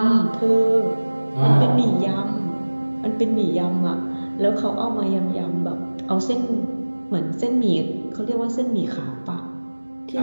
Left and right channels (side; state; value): both; inverted; correlation -1.00